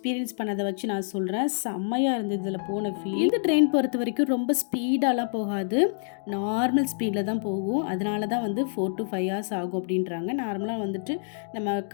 பண்ணதை வச்சு நான் சொல்கிறேன். செம்மையாக இருந்தது இதில் போன ஃபீல். இந்த ட்ரெயின் பொறுத்த வரைக்கும் ரொம்ப ஸ்பீடாலாம் போகாது. நார்மல் ஸ்பீடில் தான் போகும். அதனால தான் வந்து 4 to 5 hours ஆகும் அப்படின்றாங்க. நார்மலாக வந்துட்டு நம்ம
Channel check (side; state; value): right; silent; digital silence